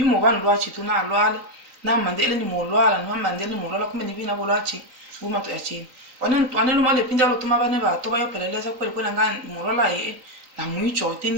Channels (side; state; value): left; late; 3.9 ms